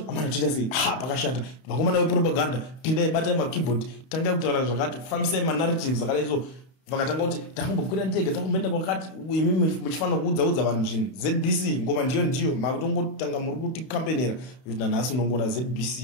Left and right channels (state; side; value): late; right; 31 ms